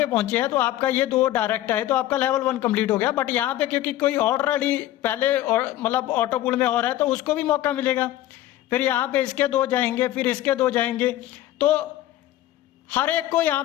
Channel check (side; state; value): right; quieter; 14.1 dB